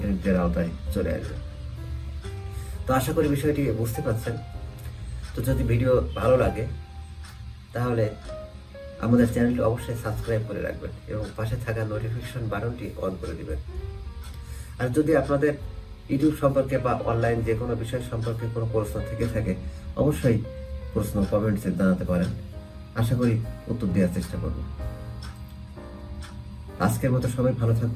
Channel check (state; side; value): identical; both; correlation 1.00